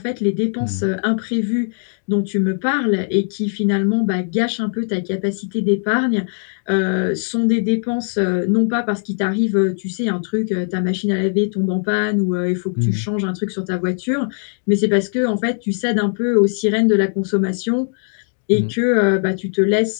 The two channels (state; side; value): silent; right; 66 dB below the other